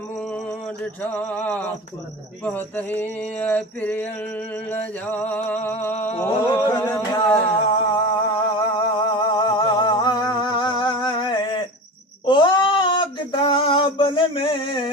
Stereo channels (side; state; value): both; normal; correlation 0.30